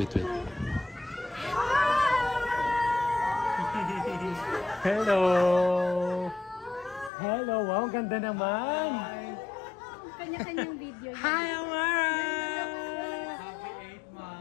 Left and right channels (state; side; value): drops out; right; at 7.1 s